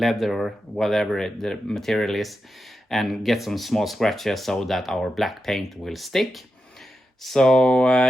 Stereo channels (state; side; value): normal; both; correlation 0.89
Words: or whatever the material is, and get some small scratches so that our black paint will stick. So